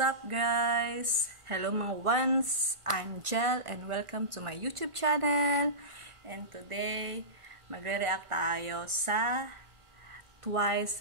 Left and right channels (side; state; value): left; late; 1.5 ms